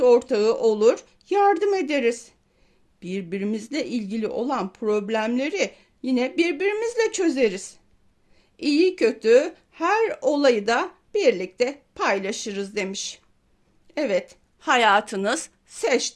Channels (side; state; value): both; identical; correlation 1.00